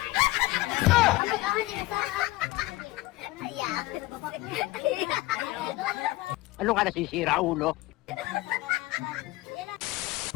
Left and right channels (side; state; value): right; quieter; 19.1 dB